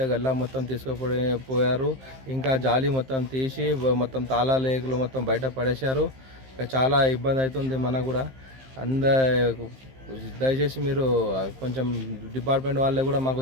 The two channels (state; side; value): late; left; 15 ms